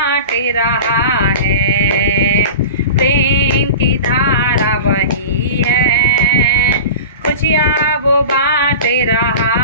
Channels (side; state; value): both; inverted; correlation -0.33